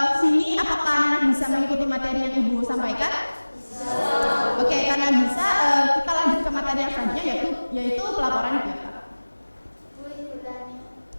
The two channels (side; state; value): both; inverted; correlation -1.00